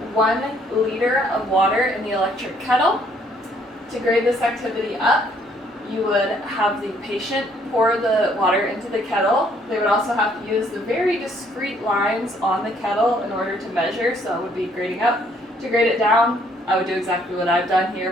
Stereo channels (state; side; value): normal; both; correlation 0.65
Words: 1 liter of water in the electric kettle. To grade this activity up, you would have the patient pour the water into the kettle. They would also have to use the very discrete lines on the kettle in order to measure, so it would be grading up. To grade it down, I would do exactly what I've done here,